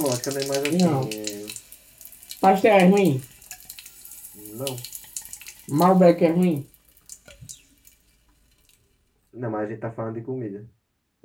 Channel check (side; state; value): both; identical; correlation 1.00